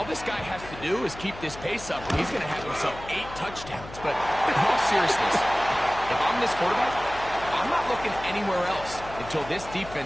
this guy has to do is keep this pace up, and he's going to have himself 8 touchdowns. But in all seriousness, if I'm this quarterback, I'm not looking anywhere else until this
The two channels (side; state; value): left; noise; hum, 15 dB below the sound